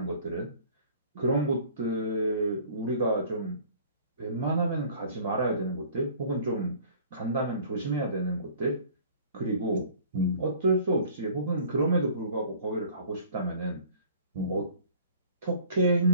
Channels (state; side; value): inverted; both; correlation -0.50